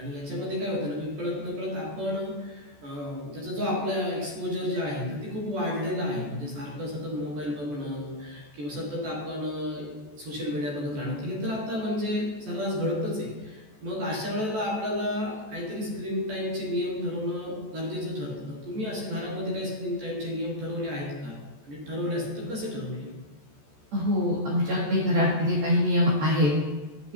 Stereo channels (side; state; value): left; late; 14 ms